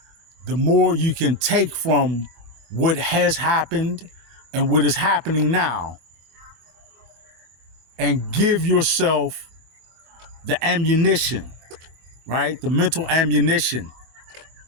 the more you can take from what has happened and what is happening now and give yourself the ammunition, right? The mental ammunition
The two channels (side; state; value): left; late; 23 ms